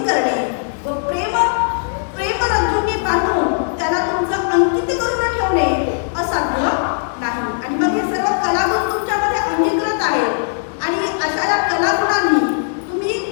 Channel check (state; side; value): silent; right; digital silence